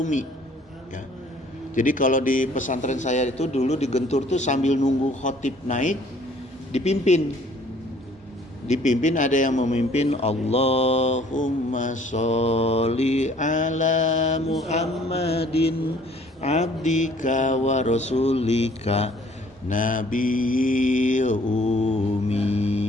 ya. Jadi kalau di pesantren saya itu dulu di Gentur tuh sambil nunggu khotib naik dipimpin ada yang memimpin, Allahumma sholli ala Muhammadin abdika wa rasulika nabiyyu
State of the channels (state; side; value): normal; both; correlation 0.57